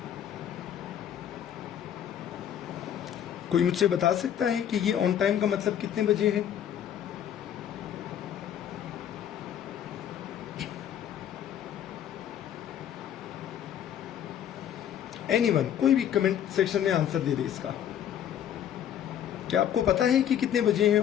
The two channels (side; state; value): right; quieter; 9.9 dB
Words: कोई मुझसे बता सकता है कि ये ऑन टाइम का मतलब कितने बजे है? एनीवन, कोई भी कमेंट सेक्शन में आंसर दे दे इसका। क्या आपको पता है कि कितने बजे हैं